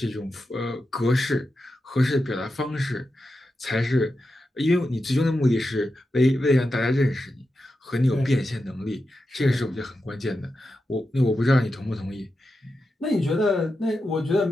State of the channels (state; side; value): normal; both; correlation 0.89